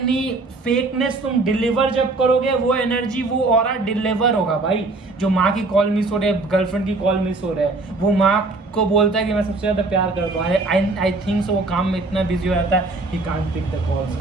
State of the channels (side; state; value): left; quieter; 3.3 dB